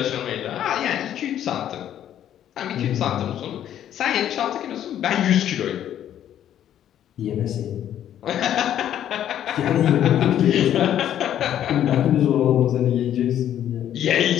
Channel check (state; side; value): quieter; right; 10.8 dB